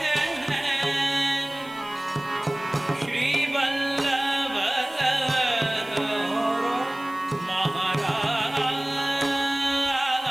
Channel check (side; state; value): right; noise; hiss, 24 dB below the sound